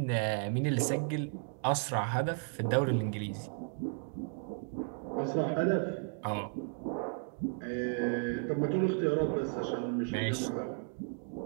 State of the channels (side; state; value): left; silent; 55 dB below the other